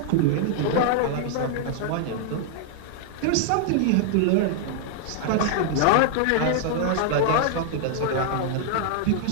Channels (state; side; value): different; both; correlation -0.01